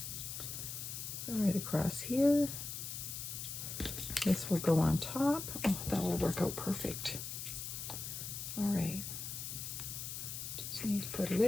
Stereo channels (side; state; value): left; noise; hiss, 6 dB below the sound